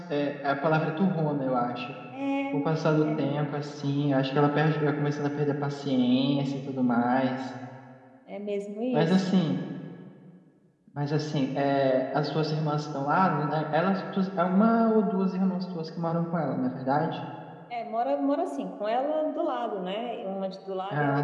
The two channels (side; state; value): both; identical; correlation 1.00